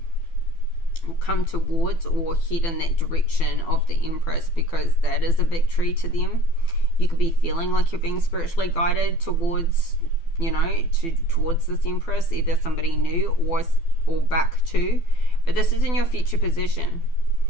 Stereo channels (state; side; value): late; right; 12 ms